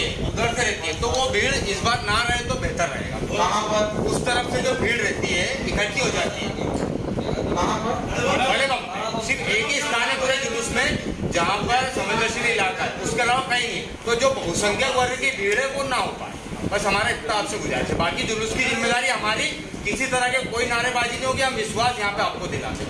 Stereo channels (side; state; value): both; identical; correlation 1.00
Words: उधर से रहती है। तो वो भीड़ इस बार ना रहे तो बेहतर रहेगा। वहाँ पर उस तरफ से जो भीड़ रहती है इकट्ठी हो जाती है। बड़े बम सिर्फ एक ही स्थान है पूरे जुलूस में जहाँ पर संवेदनशील इलाका है, उसके अलावा कहीं नहीं। तो जो बहुसंख्यक वर्ग की भीड़ है वो ना हो पाए, बस हमारा इतना आपसे गुजारिश है। बाकी जुलूस की जिम्मेदारी हमारी, किसी तरह के कोई नारेबाजी नहीं होगी। हम विश्वास यहाँ पे आपको दिलाते,